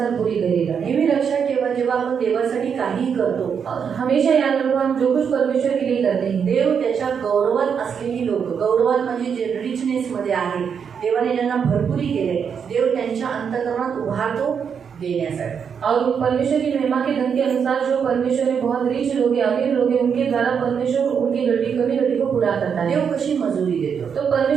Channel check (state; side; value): quieter; left; 7.0 dB